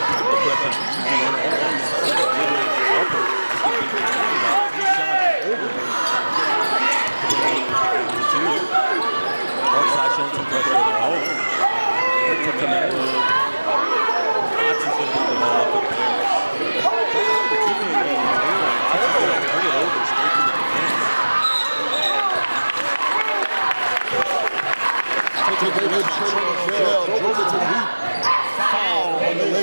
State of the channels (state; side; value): inverted; both; correlation -1.00